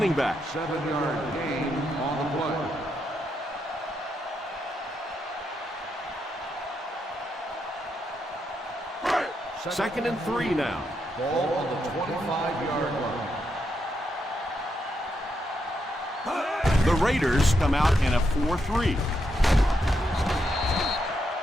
back. 7-yard gain on the play. Second and 3 now. Ball on the 25-yard line. The Raiders come out in a 4-3.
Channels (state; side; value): normal; both; correlation 0.81